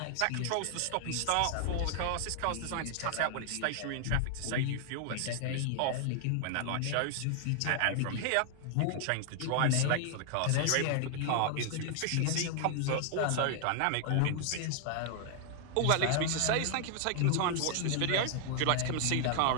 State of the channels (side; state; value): both; different; correlation 0.00